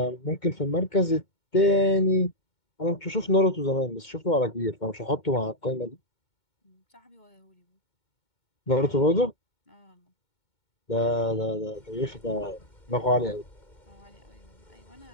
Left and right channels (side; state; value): right; late; 2.2 ms